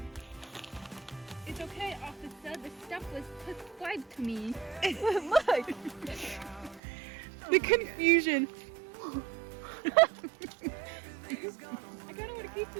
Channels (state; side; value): drops out; left; at 6.8 s